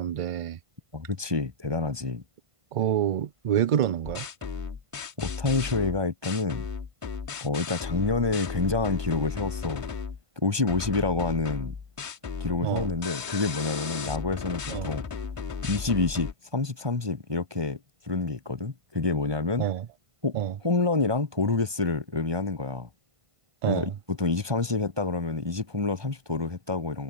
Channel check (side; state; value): left; late; 1.2 ms